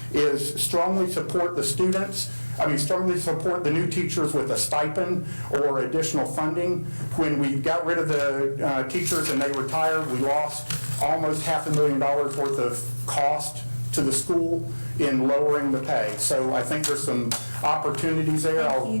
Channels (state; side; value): inverted; both; correlation -1.00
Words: is strongly support the students. Strongly support the new teachers with a stipend or additional funding. When we got rid of the teachers and they retired, we lost almost $500,000 worth of cost to the school in lowering the pay. So I think there's some opportunities there. Thank